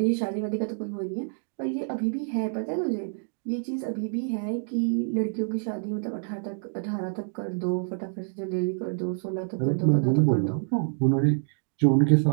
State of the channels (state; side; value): silent; left; digital silence